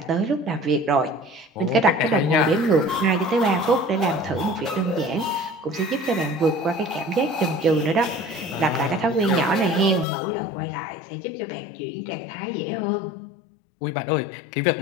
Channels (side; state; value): right; drops out; at 10.1 s